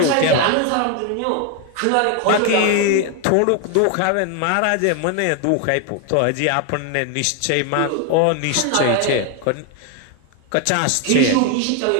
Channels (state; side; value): different; both; correlation 0.01